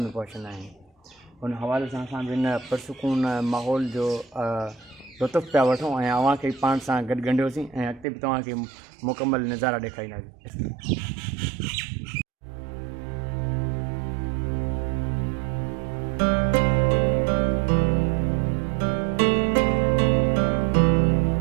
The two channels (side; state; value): left; drops out; at 8.1 s